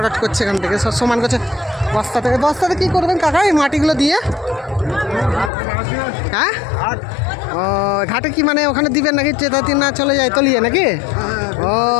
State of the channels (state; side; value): drops out; right; at 5.5 s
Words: করছে এখান থেকে, সব সমান করছে। বস্তাতে কী করবেন কাকা এই মাটিগুলো দিয়ে? হ্যাঁ, ও ঘাটে কি মানে ওখানে দিবেন নাকি? চেতাতি না চলে যায় তলিয়ে নাকি? ও